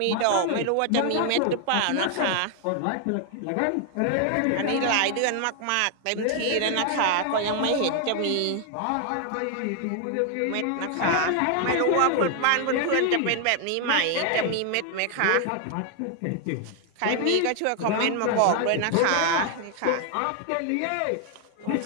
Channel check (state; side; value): different; both; correlation 0.00